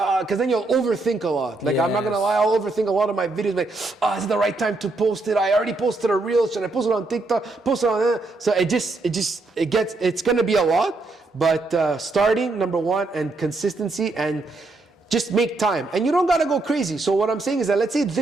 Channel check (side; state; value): left; quieter; 3.2 dB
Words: because then you'll overthink a lot. Like, I'm not gonna lie, I'll overthink a lot of my videos. Like, is it the right time to post it? I already posted a reel. Should I post it on TikTok? Post it on So it's gonna be a lot. But starting, number one, and consistency, and just make time. And you don't gotta go crazy. So what I'm saying is that, let's say